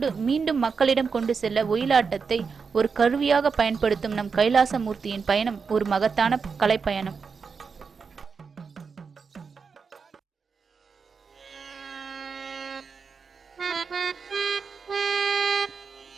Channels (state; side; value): quieter; left; 5.4 dB